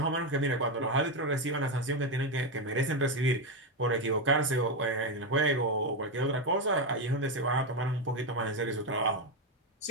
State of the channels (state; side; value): normal; both; correlation 0.08